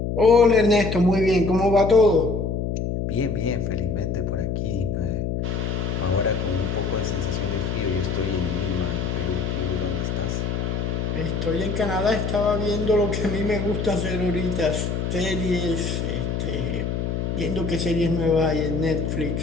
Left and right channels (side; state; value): left; noise; hum, 1 dB below the sound